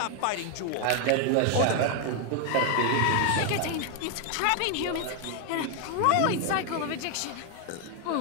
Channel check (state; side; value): different; both; correlation 0.01